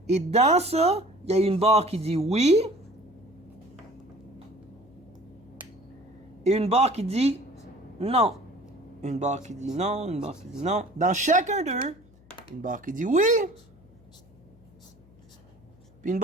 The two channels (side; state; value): left; noise; hum, 27 dB below the sound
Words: Et dans ça, il y a une barre qui dit oui et une barre qui dit non. Une barre qui dit non, une barre qui dit non. Dans chacun d'eux, une barre qui dit oui, puis une